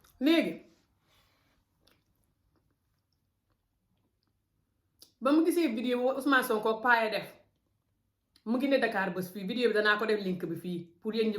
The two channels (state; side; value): identical; both; correlation 1.00